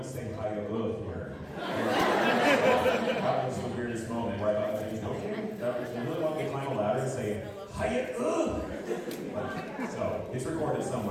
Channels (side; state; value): both; identical; correlation 1.00